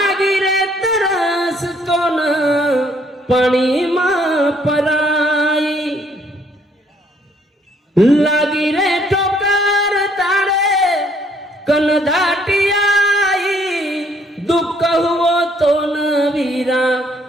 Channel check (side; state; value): both; normal; correlation 0.66